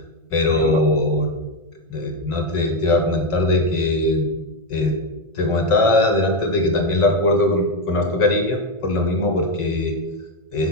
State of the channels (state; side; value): late; right; 1.5 ms